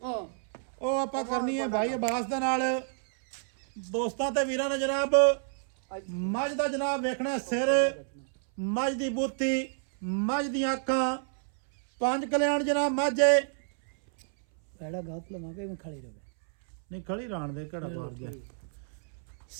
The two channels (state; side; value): silent; left; 58 dB below the other